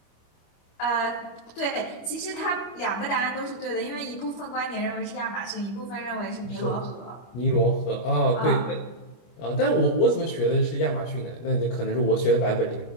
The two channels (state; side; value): late; right; 25 ms